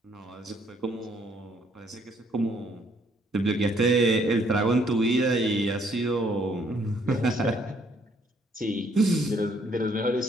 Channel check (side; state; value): both; normal; correlation 0.67